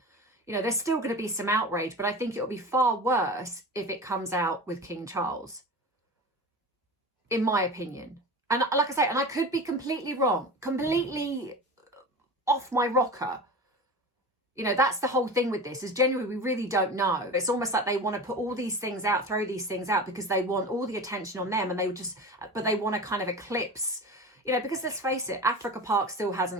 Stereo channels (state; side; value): normal; both; correlation 0.32